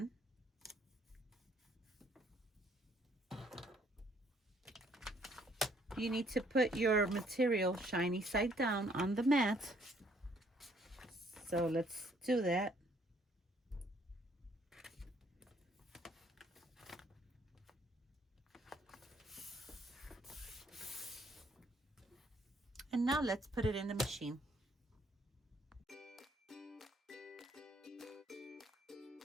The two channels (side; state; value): both; normal; correlation 0.65